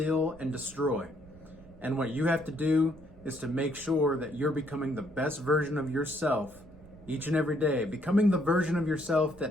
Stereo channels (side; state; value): right; noise; rumble, 22 dB below the sound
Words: and destroy. And what you have to do is to make sure that you're becoming the best version of yourself each and every day, becoming the version of yourself